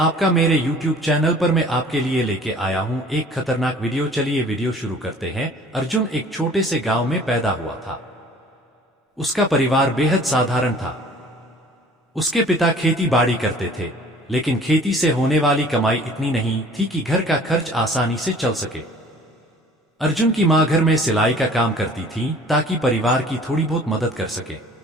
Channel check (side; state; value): both; normal; correlation 0.50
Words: मेरे YouTube चैनल पर। मैं आपके लिए लेके आया हूँ एक खतरनाक वीडियो। चलिए वीडियो शुरू करते हैं। अर्जुन एक छोटे से गांव में पैदा हुआ था। उसका परिवार बेहद साधारण था। उसके पिता खेती बाड़ी करते थे, लेकिन खेती से होने वाली कमाई इतनी नहीं थी कि घर का खर्च आसानी से चल सके। अर्जुन की माँ घर में सिलाई का काम करती थी ताकि परिवार की थोड़ी बहुत मदद कर सके।